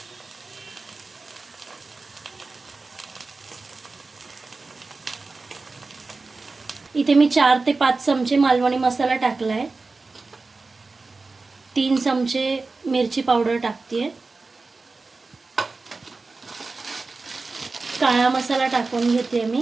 इथे मी 4 ते 5 चमचे मालवणी मसाला टाकला आहे. 3 चमचे मिरची पावडर टाकते. काळा मसाला टाकून घेते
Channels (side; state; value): left; quieter; 3.8 dB